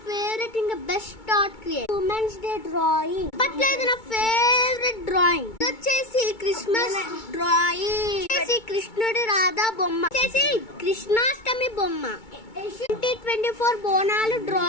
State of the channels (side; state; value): right; late; 2.2 ms